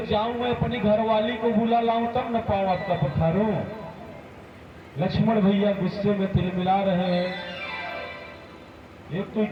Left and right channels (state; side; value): identical; both; correlation 1.00